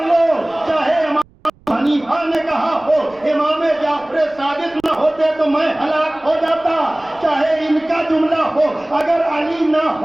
لو۔ چاہے امام حنیفہ نے کہا ہو امام جعفر صادق نہ ہوتے تو میں ہلاک ہو جاتا، چاہے ان کا جملہ ہو اگر علی نہ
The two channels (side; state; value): right; noise; rumble, 29 dB below the sound